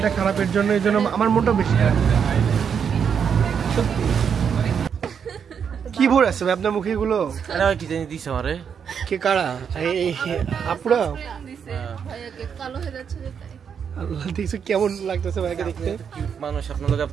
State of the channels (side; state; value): left; quieter; 7.2 dB